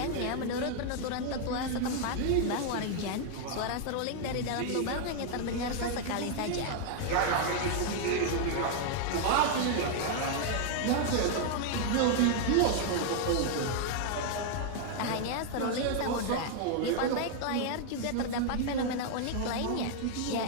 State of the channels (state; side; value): different; both; correlation 0.00